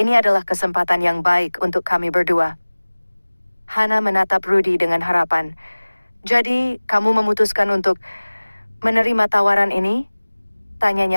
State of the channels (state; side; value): inverted; both; correlation -1.00